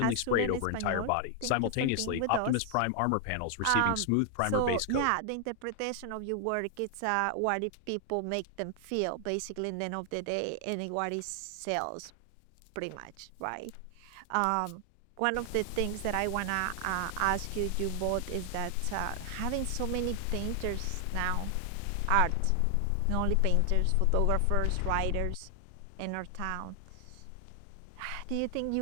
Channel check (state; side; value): different; both; correlation 0.00